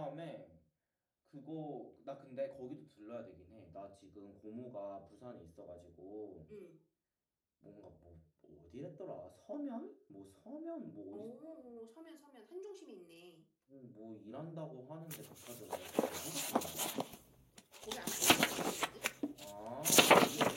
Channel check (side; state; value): both; identical; correlation 1.00